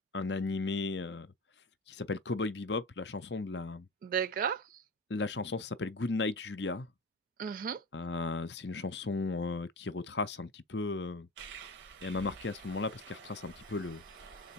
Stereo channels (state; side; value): normal; both; correlation 0.29